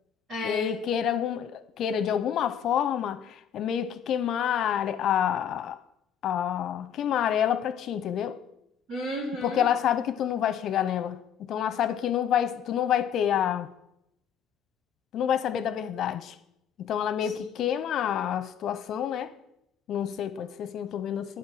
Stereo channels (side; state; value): right; quieter; 8.8 dB